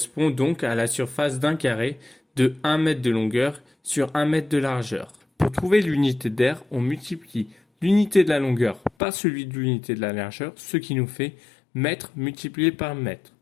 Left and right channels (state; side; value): drops out; right; at 8.9 s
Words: donc à la surface d'un carré de 1 mètre de longueur sur 1 mètre de largeur. Pour trouver l'unité d'air, on multiplie l'unité de la longueur par celui de l'unité de la largeur, ce qui nous fait mètre multiplié par mètre.